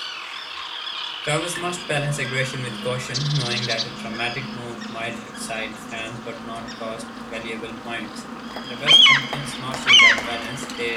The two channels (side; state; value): both; identical; correlation 1.00